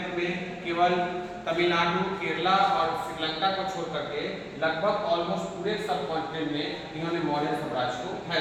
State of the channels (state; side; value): identical; both; correlation 1.00